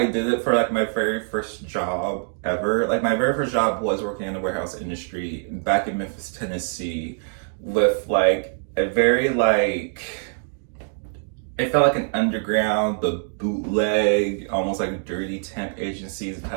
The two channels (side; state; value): left; silent; digital silence